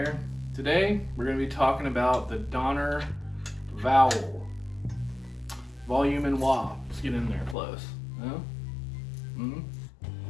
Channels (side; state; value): right; drops out; at 7.6 s